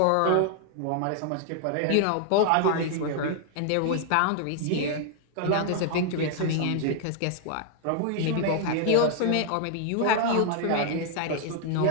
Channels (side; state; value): both; different; correlation 0.00